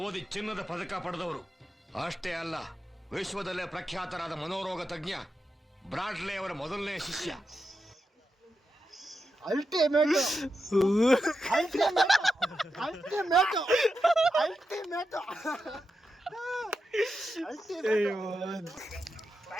ಓದಿ ಚಿನ್ನದ ಪದಕ ಪಡೆದವರು. ಅಷ್ಟೇ ಅಲ್ಲ, ವಿಶ್ವದಲ್ಲೇ ಪ್ರಖ್ಯಾತರಾದ ಮನೋರೋಗ ತಜ್ಞ ಬ್ರಾಡ್ಲೆ ಅವರ ಮೊದಲನೇ ಶಿಷ್ಯ.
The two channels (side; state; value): both; normal; correlation 0.87